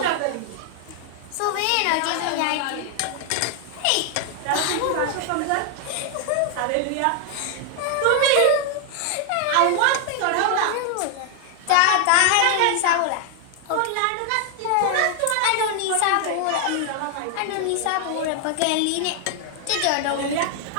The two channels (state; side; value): different; both; correlation 0.00